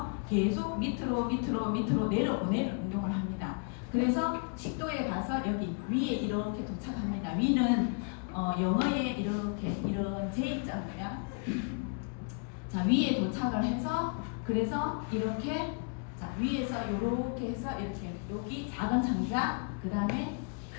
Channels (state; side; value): quieter; right; 39.8 dB